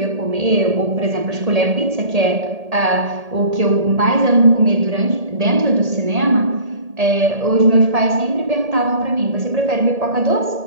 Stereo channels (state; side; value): late; left; 1.8 ms